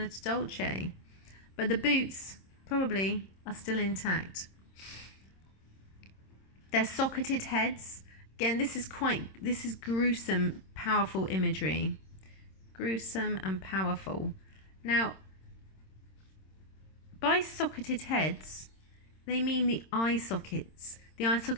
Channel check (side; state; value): right; late; 26 ms